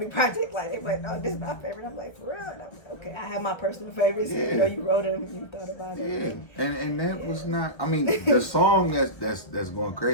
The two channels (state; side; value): late; right; 1.3 ms